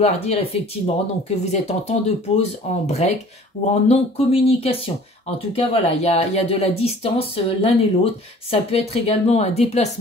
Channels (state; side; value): normal; both; correlation 0.49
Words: dire effectivement donc que vous êtes en temps de pause, en break ou en non-communication. En tout cas, voilà, il y a de la distance l'un et l'autre. Ça peut être également un